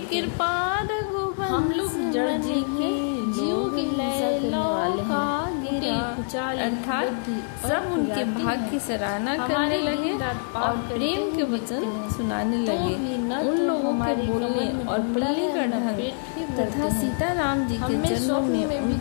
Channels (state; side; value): silent; right; digital silence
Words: हैं। हम लोग जड़ जीव हैं, जीवों की हिंसा करने वाले हैं, कुचाल बुद्धि सब उनके भाग की सराहना करने लगे और प्रेम के वचन सुनाने लगे। भी न तो हमारी कमर में और पढ़ाई का ढंग पेट भी तथा सीता राम जी हमें स्वप्न में भी